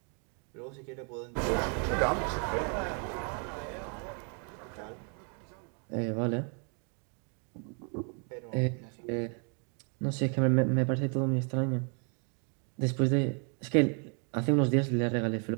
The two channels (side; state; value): left; quieter; 39.3 dB